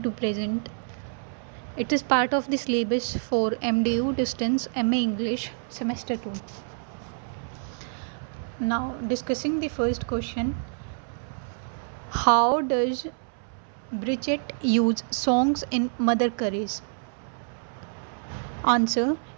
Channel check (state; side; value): silent; left; 60 dB below the other